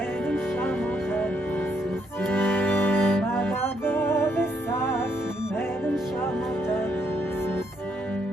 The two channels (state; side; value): normal; both; correlation 0.74